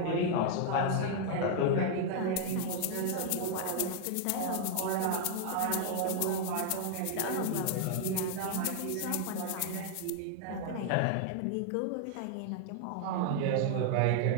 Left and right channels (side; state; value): both; different; correlation 0.00